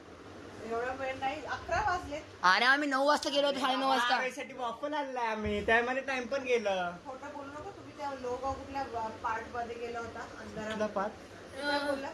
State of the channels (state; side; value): identical; both; correlation 1.00